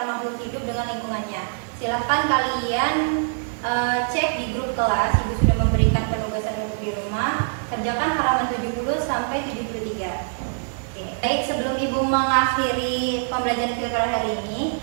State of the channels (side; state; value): left; silent; digital silence